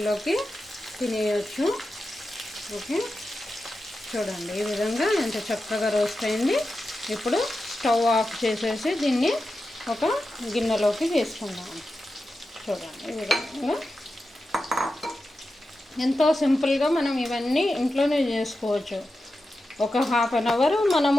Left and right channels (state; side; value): normal; both; correlation 0.91